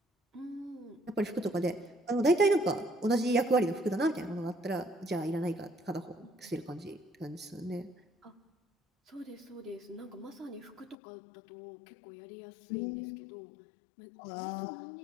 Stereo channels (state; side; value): drops out; right; at 11.0 s